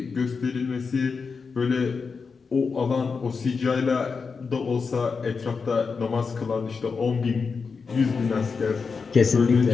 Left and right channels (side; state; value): right; quieter; 5.1 dB